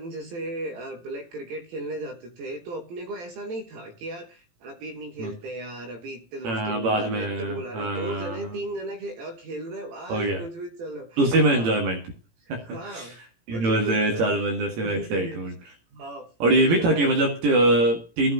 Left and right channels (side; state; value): left; late; 18 ms